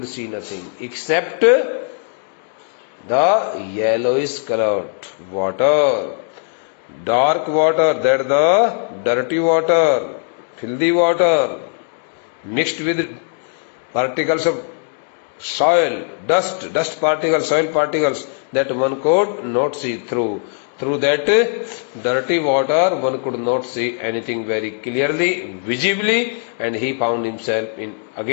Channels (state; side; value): silent; right; 58 dB below the other